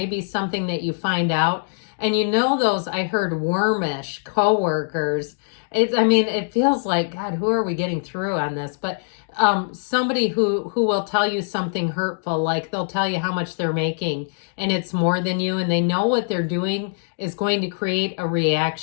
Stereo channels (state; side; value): silent; right; digital silence